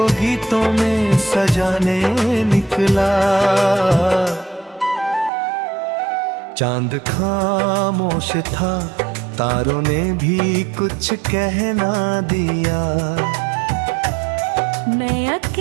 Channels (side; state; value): left; drops out; at 5.3 s